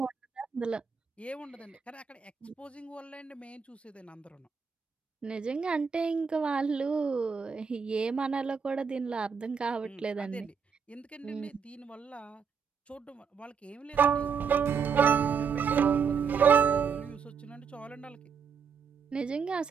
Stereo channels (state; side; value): quieter; left; 6.1 dB